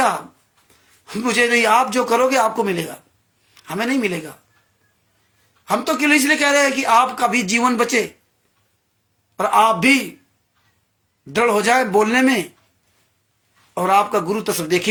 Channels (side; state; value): both; identical; correlation 1.00